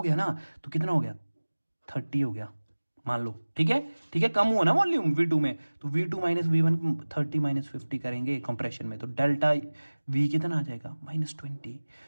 गया ना, तो कितना हो गया, 30 हो गया मान लो, ठीक है, ठीक है, कम हुआ ना वॉल्यूम V2 में, तो V2 माइनस V1 30 माइनस 50 करेंगे कंप्रेशन में, तो डेल्टा V कितना आ जाएगा, -20।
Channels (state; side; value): inverted; both; correlation -1.00